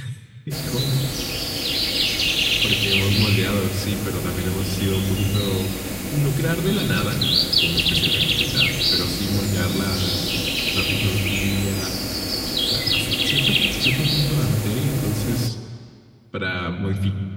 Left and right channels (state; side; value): identical; both; correlation 1.00